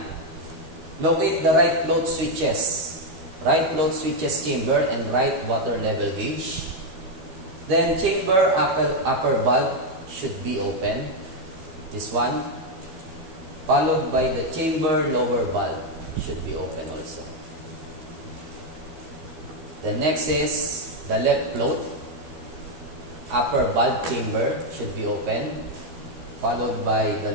Locate the right float switches. Right float switches chamber and right water level gauge. Then chamber upper valve should be open. This one. Followed by the chamber lower valve should be open also. The next is the left float upper valve chamber should be open. Followed by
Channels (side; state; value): left; late; 13 ms